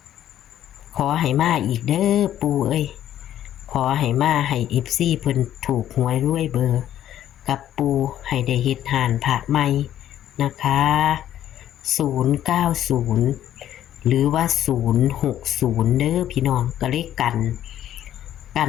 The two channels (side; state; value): right; quieter; 11.6 dB